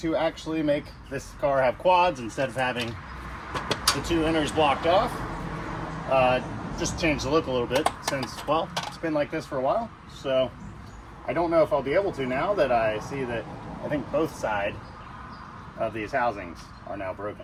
actually make this car have quads instead of having the 2 inners blocked off. Just to change the look a little bit since, well, it's been like this for a while. So I don't know if I'll be able to now that I see that I think both sides of these housings are now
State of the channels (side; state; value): both; identical; correlation 1.00